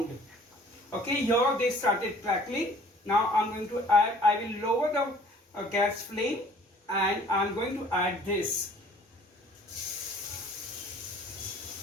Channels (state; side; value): normal; both; correlation 0.53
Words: Okay, here they started crackling. Now I'm going to add, I will lower the gas flame and I'm going to add this.